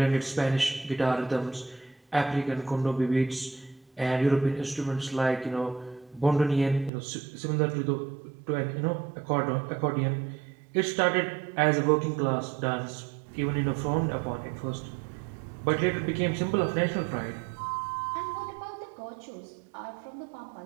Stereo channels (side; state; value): left; drops out; at 6.9 s